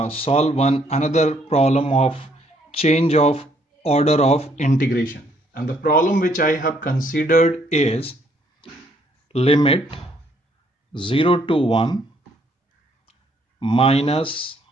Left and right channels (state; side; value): normal; both; correlation 0.67